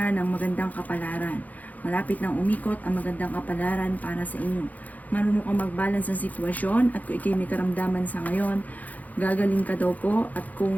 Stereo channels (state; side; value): late; right; 0.079 ms